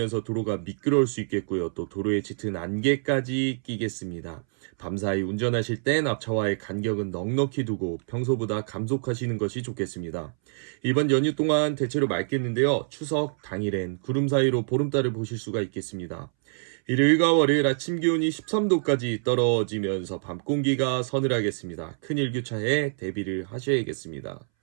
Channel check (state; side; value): silent; left; 61 dB below the other